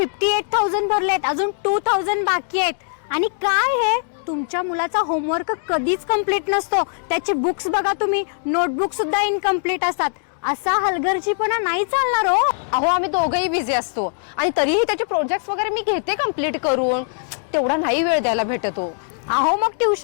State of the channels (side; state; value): right; silent; digital silence